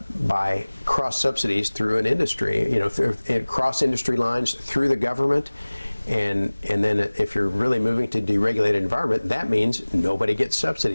by cross subsidies through an industry, you know, cross industry lines through the government. And then if you're really moving to deregulated environment, that means nobody gets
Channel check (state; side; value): inverted; both; correlation -1.00